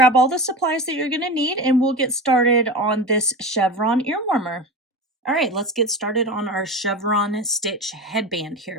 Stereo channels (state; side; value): normal; both; correlation 0.26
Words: all the supplies that you're going to need and we'll get started on this chevron ear warmer. All right, let's get started on our chevron stitch headband